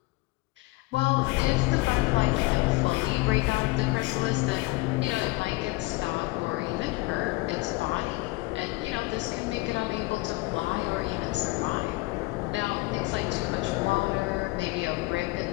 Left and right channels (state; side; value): quieter; right; 22.6 dB